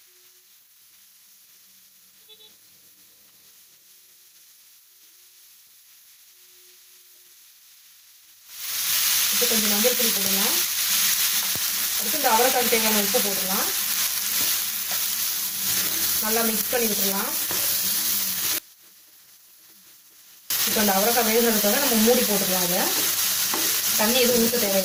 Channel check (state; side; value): identical; both; correlation 1.00